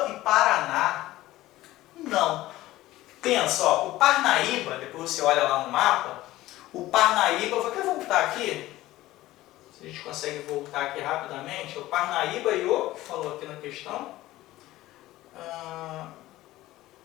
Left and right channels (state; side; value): quieter; right; 16.5 dB